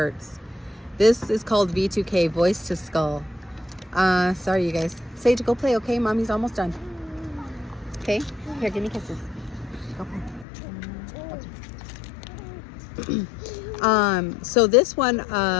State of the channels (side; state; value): right; drops out; at 10.5 s